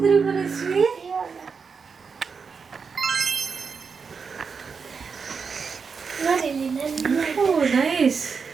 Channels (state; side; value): quieter; left; 5.5 dB